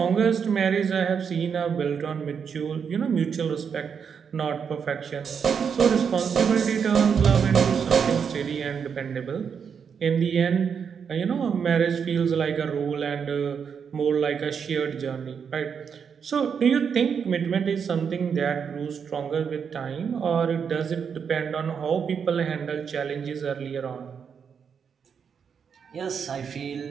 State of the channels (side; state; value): left; quieter; 6.8 dB